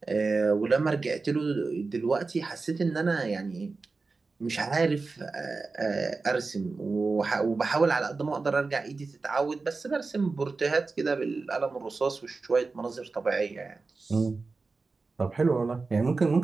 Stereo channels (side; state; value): left; quieter; 4.0 dB